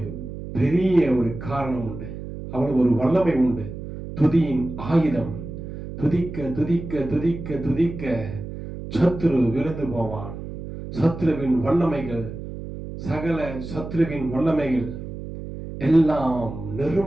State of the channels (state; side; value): noise; right; hum, 9 dB below the sound